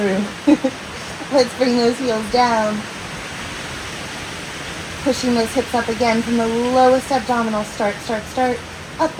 Let's bring those heels down. Pushing those hips up again from the lowest abdominal. Start, start, start. Up,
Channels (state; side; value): identical; both; correlation 1.00